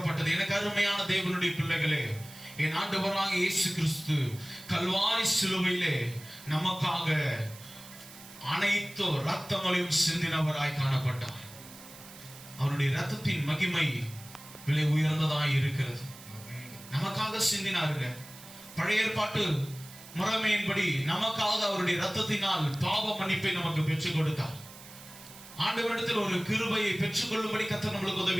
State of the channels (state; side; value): noise; right; hiss, 18 dB below the sound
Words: எனக்கு அருமையான தேவனுடைய பிள்ளைகளே, என் ஆண்டவராகிய இயேசு கிறிஸ்து கல்வாரி சிலுவையிலே நமக்காக அனைத்து ரத்தங்களையும் சிந்தினவராய் காணப்பட்டார். அவருடைய ரத்தத்தின் மகிமை விலை உயர்ந்ததாய் இருக்கிறது. நமக்காக சிந்தினாருங்க. பழைய ஏற்பாட்டு முறைமையின்படி நமக்காக அவருடைய ரத்தத்தினால் பாவ மன்னிப்பை நமக்கு பெற்றுக் கொடுத்தார். ஆண்டவரிடத்தில் ஒரு கிருபையை பெற்றுக் கொள்ளும்படி கர்த்தர் நம்மளுக்கு